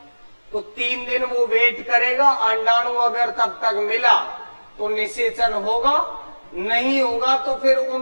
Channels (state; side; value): inverted; both; correlation -1.00